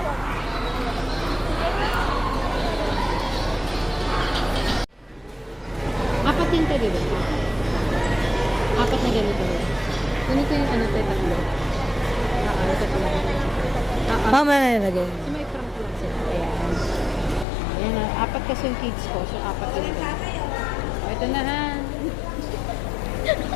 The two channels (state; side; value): drops out; right; at 17.4 s